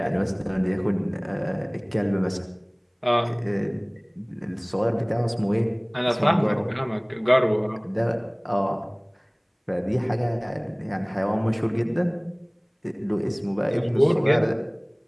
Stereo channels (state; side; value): identical; both; correlation 1.00